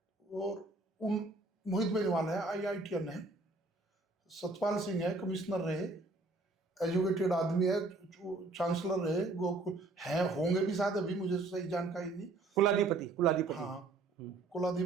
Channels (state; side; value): quieter; left; 3.3 dB